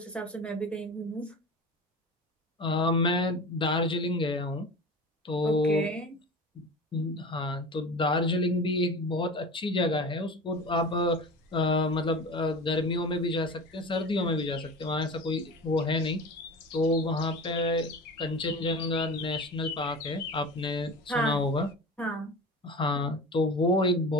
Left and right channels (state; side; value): normal; both; correlation 0.33